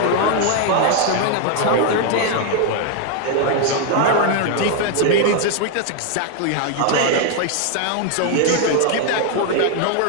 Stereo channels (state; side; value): different; both; correlation 0.00